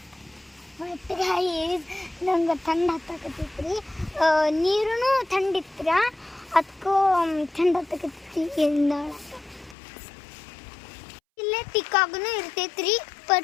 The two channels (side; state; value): right; drops out; at 9.8 s